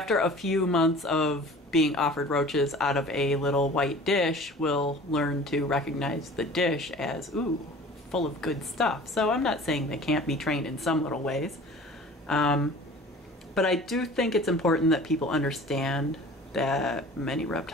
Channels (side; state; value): both; normal; correlation 0.44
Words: a few months of being offered roaches out of a little white dish, will learn to recognize the dish as, ooh, full of good stuff. So I'm not saying they can't be trained in some little ways. But I do think it's important that people understand that many